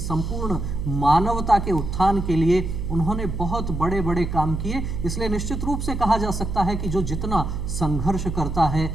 मानवता के उत्थान के लिए उन्होंने बहुत बड़े बड़े काम किए। इसलिए निश्चित रूप से कहा जा सकता है कि जो जितना संघर्ष करता है,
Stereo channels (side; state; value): right; noise; hum, 4 dB below the sound